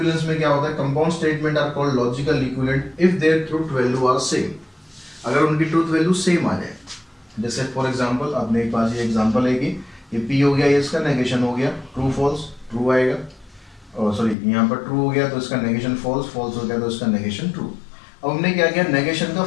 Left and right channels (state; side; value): drops out; right; at 14.4 s